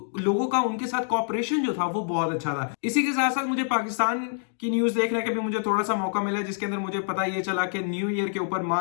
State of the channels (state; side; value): silent; right; digital silence